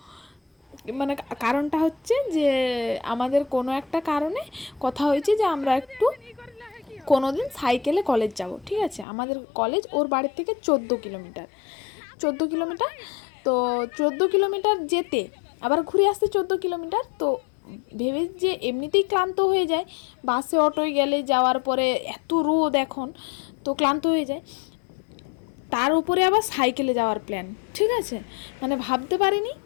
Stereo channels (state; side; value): drops out; right; at 9.1 s